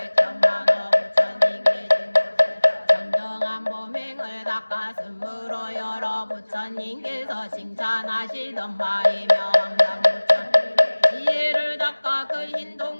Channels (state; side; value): inverted; both; correlation -1.00